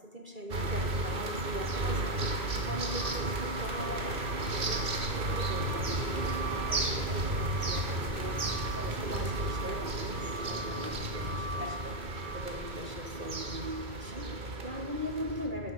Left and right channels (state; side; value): late; left; 2.6 ms